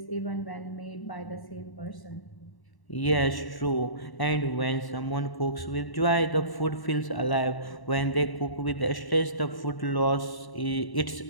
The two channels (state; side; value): late; right; 1.1 ms